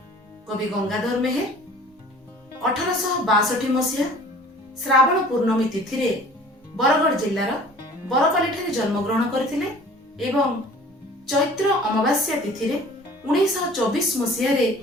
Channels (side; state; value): both; normal; correlation 0.48